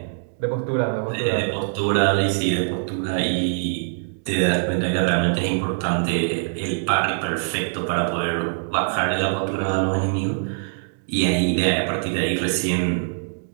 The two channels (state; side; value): silent; left; digital silence